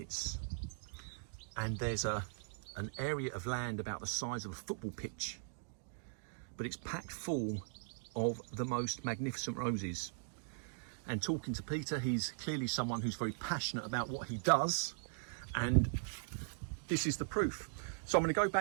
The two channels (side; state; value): left; silent; digital silence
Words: And there's an area of land about the size of a football pitch. But it's packed full of the most magnificent roses. And talking to Peter, he's clearly someone who's very passionate about what he does. And this is the proof. So I'm going to go